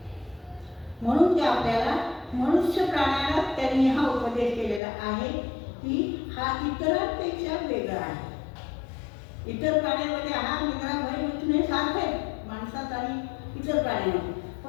म्हणून ते आपल्याला मनुष्य प्राण्याला त्यांनी हा उपदेश केलेला आहे की हा इतरांपेक्षा वेगळा आहे. इतर प्राण्यांमध्ये आहार निद्रा भयमैथुन हे सारखं आहे माणसात आणि इतर प्राण्यांमध्ये,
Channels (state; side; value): drops out; right; at 4.8 s